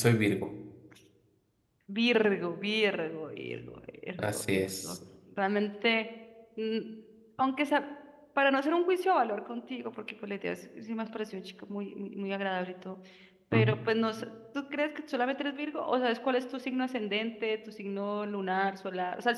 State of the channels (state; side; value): identical; both; correlation 1.00